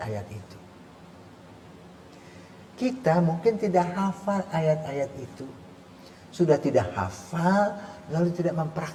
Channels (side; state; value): both; identical; correlation 1.00